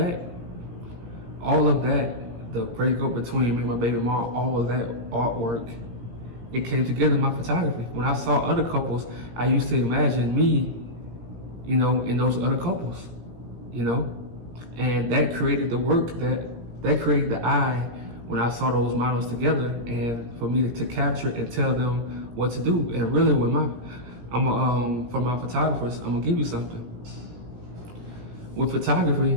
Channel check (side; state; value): left; late; 17 ms